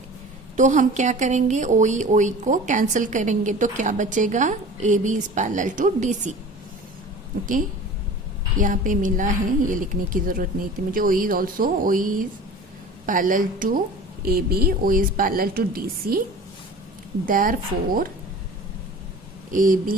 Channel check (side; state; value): both; normal; correlation 0.39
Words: तो हम क्या करेंगे, OE को कैंसिल करेंगे तो क्या बचेगा, AB is parallel to DC। Okay, यहाँ पे मिला है, ये लिखने की जरूरत नहीं थी मुझे। OE is parallel to AB, OE is parallel to DC, therefore AB